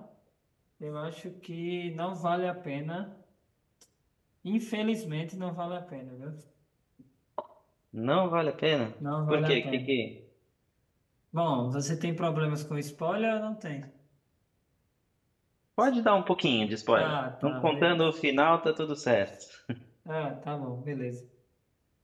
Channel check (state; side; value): identical; both; correlation 1.00